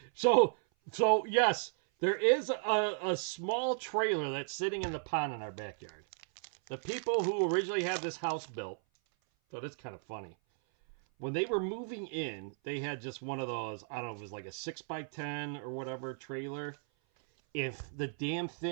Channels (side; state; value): left; silent; 55 dB below the other